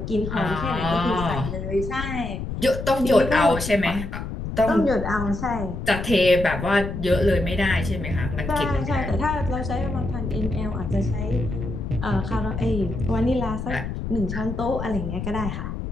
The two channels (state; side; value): noise; left; rumble, 5 dB below the sound